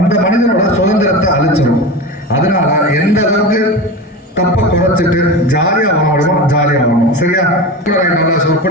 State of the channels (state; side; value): normal; both; correlation 0.26